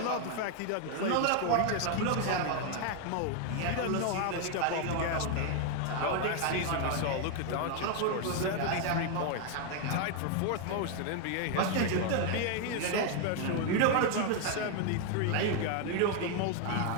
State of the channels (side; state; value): both; different; correlation 0.01